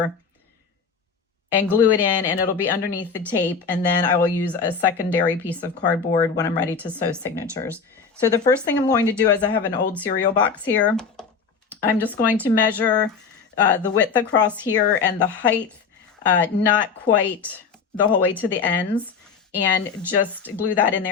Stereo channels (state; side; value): quieter; right; 5.6 dB